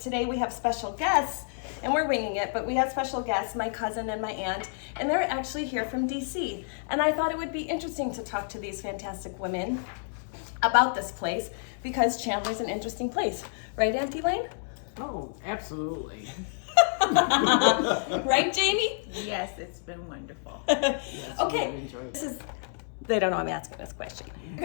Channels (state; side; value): silent; right; digital silence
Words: we have special guests, and we're winging it, but we have special guests, my cousin and my aunt, and they're actually here from DC. And I thought it would be interesting to talk to these fantastic women about this place because Chandler's an interesting place. Right, Auntie Lane? Oh, absolutely. Right, Jamie? Yes, it's been wonderful. Yes, Okay, really enjoyed it. this is, they don't know I'm asking this question. You